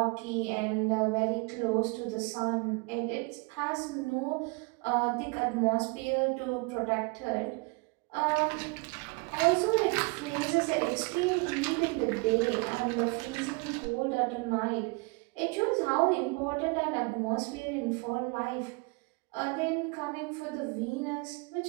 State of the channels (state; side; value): quieter; left; 29.1 dB